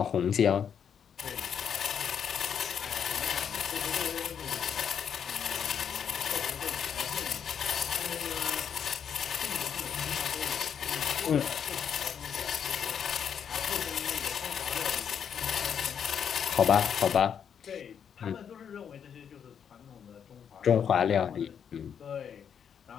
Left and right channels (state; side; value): quieter; right; 7.8 dB